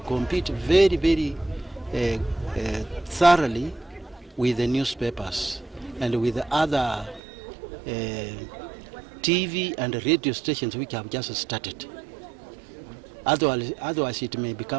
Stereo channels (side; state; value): left; drops out; at 7.2 s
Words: compete very, very thoroughly with the newspapers and with the other TV and radio stations which have just started. Otherwise it may